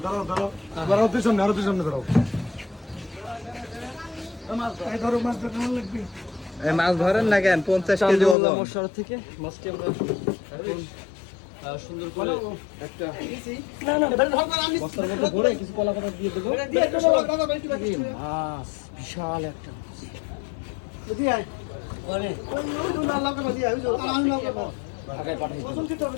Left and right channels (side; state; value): right; drops out; at 8.3 s